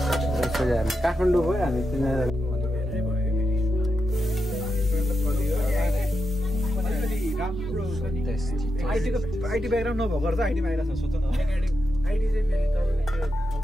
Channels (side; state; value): both; normal; correlation 0.87